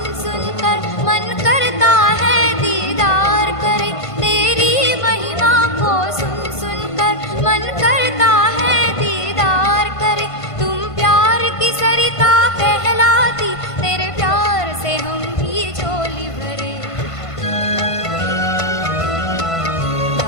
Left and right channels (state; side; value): late; right; 1.5 ms